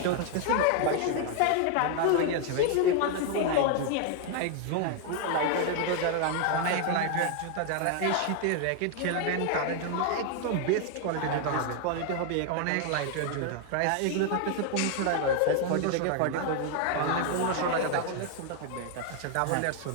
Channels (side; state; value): both; different; correlation 0.00